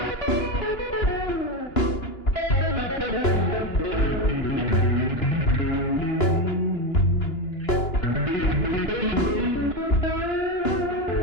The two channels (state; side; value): late; right; 2.9 ms